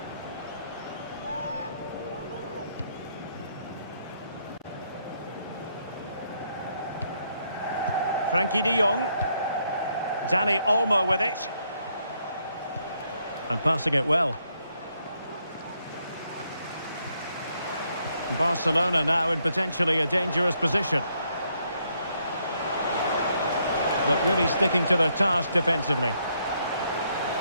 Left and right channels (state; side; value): inverted; both; correlation -0.74